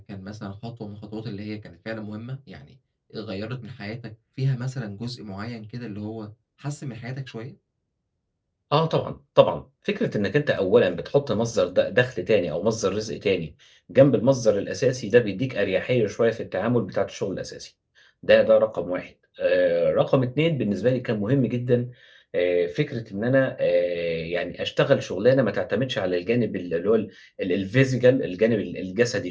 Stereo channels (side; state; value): both; identical; correlation 1.00